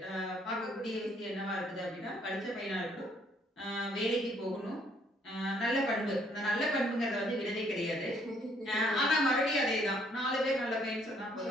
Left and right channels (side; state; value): both; normal; correlation 0.66